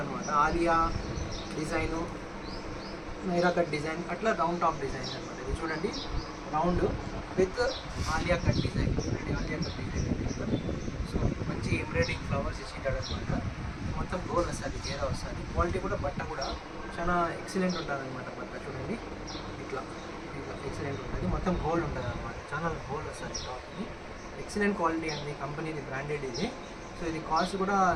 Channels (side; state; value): both; identical; correlation 1.00